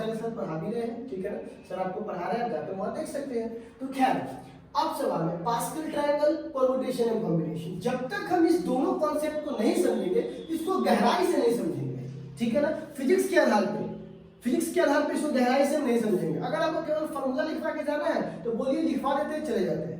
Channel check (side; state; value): both; identical; correlation 1.00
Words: सर पढ़ा भी रहे हैं, ठीक है ना, सर आपको पढ़ा रहे हैं, आप जाकर वहां देख सकते हैं। तो खैर अब सवाल है pascal triangle, permutation and combination. जब तक हम इस दोनों कॉन्सेप्ट को नहीं समझेंगे, इसको गहराई से नहीं समझेंगे, ठीक है ना, फिजिक्स के आधार पे, फिजिक्स के आधार पे इसको गहराई से हम नहीं समझेंगे। अगर आपको केवल फॉर्मूला लिखवा के जाना है तो बोलिए लिखवा देते हैं, चले जाते